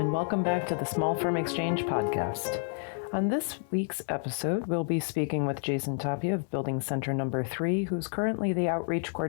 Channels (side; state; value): right; silent; 57 dB below the other